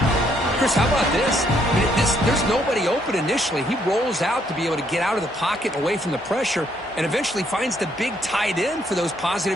Chris, how about this? I mean, there's nobody open initially. He rolls out to be able to get out of the pocket away from the pressure and eventually finds the big tight end for those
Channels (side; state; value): both; normal; correlation 0.70